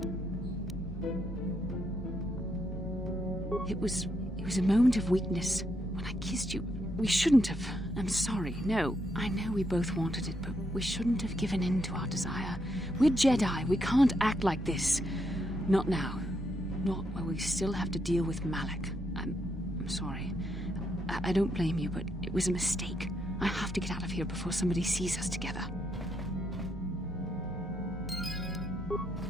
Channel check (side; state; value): both; normal; correlation 0.78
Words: It was a moment of weakness. When I kissed you, we shouldn't have. I'm sorry. No, I know we both wanted it, but we shouldn't have given in to our desire. We're Jedi. We can't act like this. Not now. Not while we still have to deal with Malak. I'm sorry. I don't blame you, but it was a mistake. I have to get out of here before somebody sees us together.